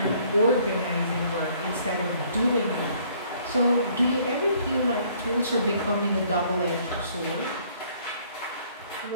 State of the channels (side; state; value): both; inverted; correlation -0.61